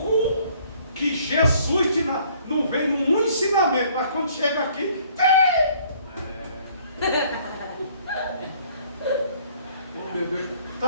que Jesus não vem num ensinamento, mas quando chega aqui, tem! Oh meu Deus,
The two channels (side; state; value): both; inverted; correlation -0.59